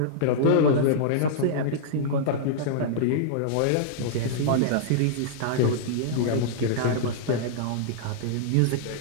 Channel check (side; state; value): both; different; correlation -0.02